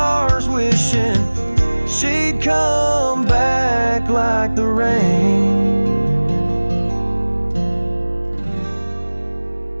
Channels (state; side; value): inverted; both; correlation -1.00